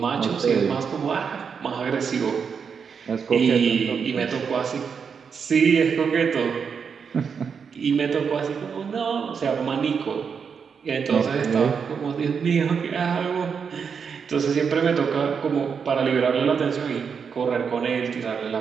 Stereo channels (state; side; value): quieter; left; 6.3 dB